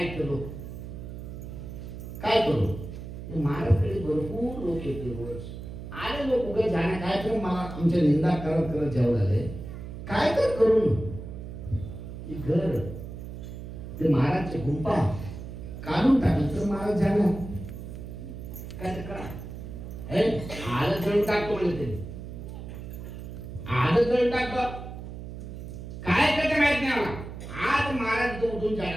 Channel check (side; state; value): right; noise; hum, 10 dB below the sound